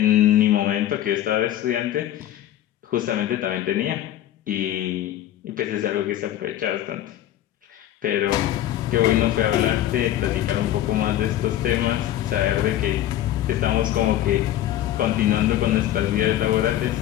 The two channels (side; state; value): right; quieter; 12.7 dB